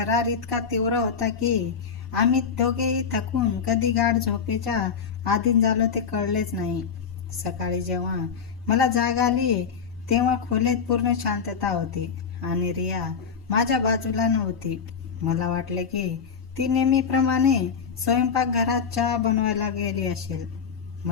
इतका तीव्र होता की आम्ही दोघेही थकून कधी गाढ झोपेच्या अधीन झालो ते कळलेच नाही. सकाळी जेव्हा मला जाग आली तेव्हा खोलीत पूर्ण शांतता होती आणि रिया माझ्या बाजूला नव्हती. मला वाटले की ती नेहमीप्रमाणे स्वयंपाकघरात चहा बनवायला गेली असेल,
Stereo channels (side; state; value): right; quieter; 6.3 dB